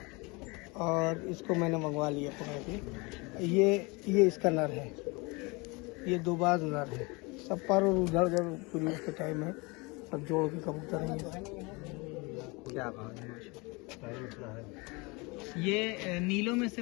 और इसको मैंने मंगवा लिया पकड़ के। ये इसका नर है, ये दो बाज नर है। सब पर और उधर उधर पूरी उसके टाइम है, सब जोड़ के कबूतर है क्या बात है, माशाल्लाह। ये नीलों में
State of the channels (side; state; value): right; quieter; 27.0 dB